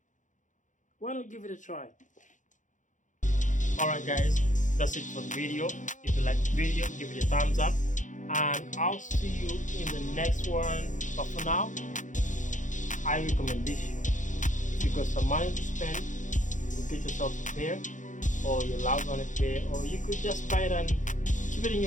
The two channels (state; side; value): late; right; 0.37 ms